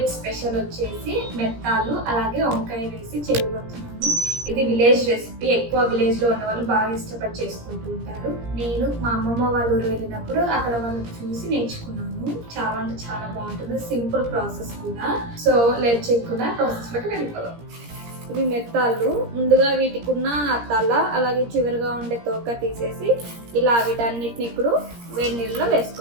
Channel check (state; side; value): late; left; 17 ms